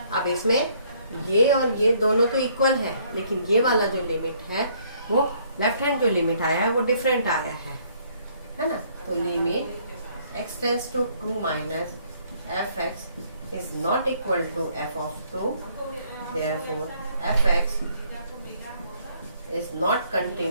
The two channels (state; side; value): inverted; both; correlation -0.65